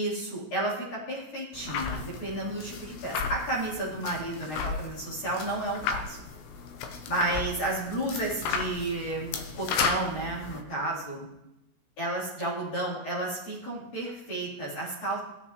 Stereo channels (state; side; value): late; right; 16 ms